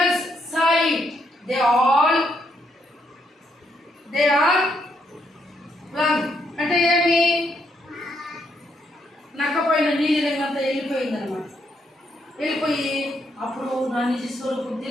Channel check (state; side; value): normal; both; correlation 0.76